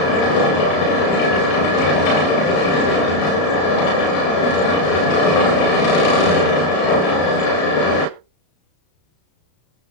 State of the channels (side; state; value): right; late; 33 ms